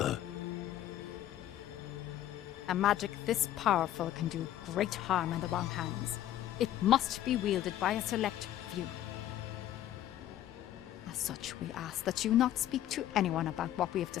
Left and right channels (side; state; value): right; quieter; 12.5 dB